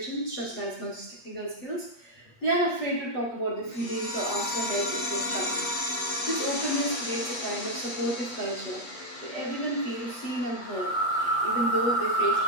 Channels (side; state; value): right; late; 8.3 ms